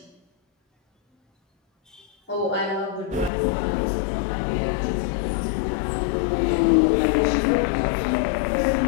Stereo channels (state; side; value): drops out; right; at 3.3 s